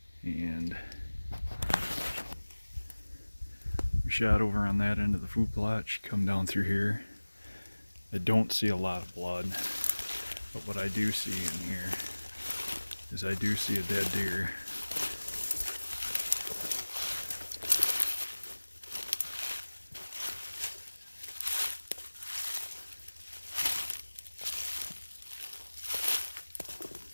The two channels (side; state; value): both; inverted; correlation -1.00